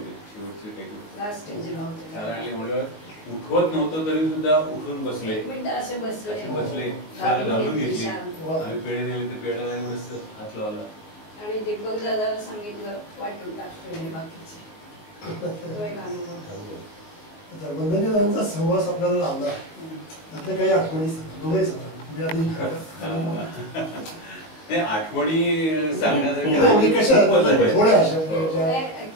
शेवटचे काही दिवस. कारण म्हणलं उठवत नव्हतं तरी सुद्धा उठून बसले, असे बसले, शाल घालून घेतली. आम्ही पेढे नेले तर पेढ्याला एवढंच हात लावला आणि दीपक दादाला सांगितलं वाटून टाकतो हे बाकीचे. वंदनीय दादांचा सहवास आपल्याला लावला, त्यातल्या काही आठवणी दोघंही सांगा. नाही, आठवणी सांगण्यासाठी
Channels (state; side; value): late; right; 19 ms